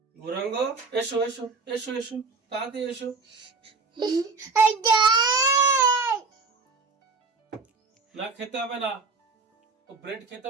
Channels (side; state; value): left; quieter; 4.4 dB